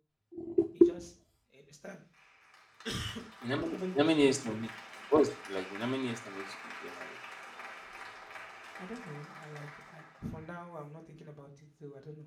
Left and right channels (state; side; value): identical; both; correlation 1.00